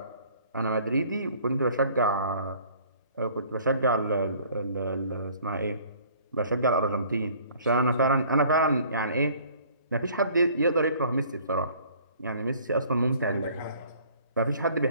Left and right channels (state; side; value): inverted; both; correlation -0.54